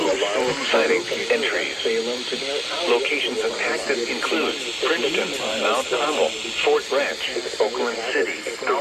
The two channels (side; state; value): both; identical; correlation 1.00